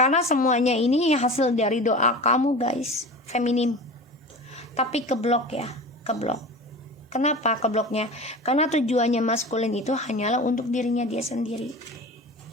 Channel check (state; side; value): normal; both; correlation 0.34